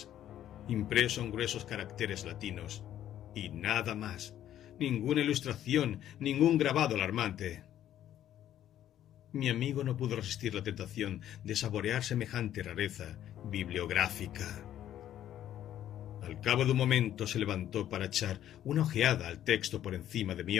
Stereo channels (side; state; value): right; quieter; 11.6 dB